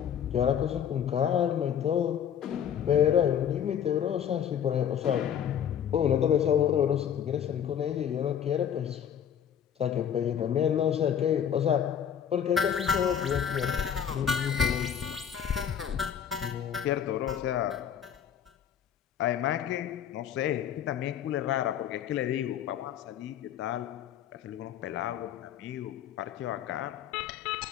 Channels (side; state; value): right; quieter; 8.9 dB